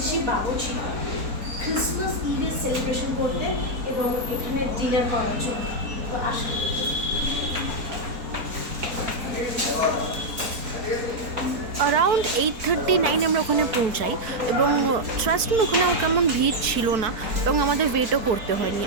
বাবুর্চি ক্রিসমাস ইভের সেলিব্রেশন করতে এবং এখানে ডিনার করার জন্য। তো আসুন। অ্যারাউন্ড 8:39 আমরা ওখানে পৌঁছাই এবং ট্রাস্ট মি ওখানে কেমন ভিড় ছিল না এবং আমাদের ওয়েটও করতে হয়নি।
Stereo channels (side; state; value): left; late; 4.2 ms